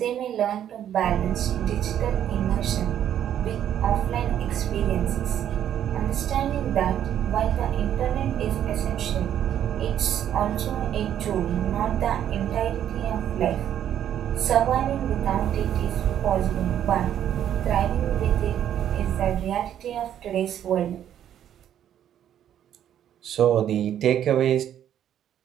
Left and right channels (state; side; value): quieter; left; 10.3 dB